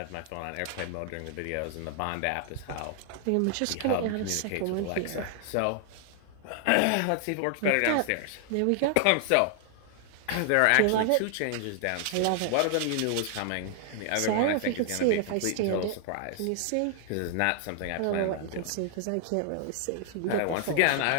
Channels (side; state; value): both; different; correlation 0.00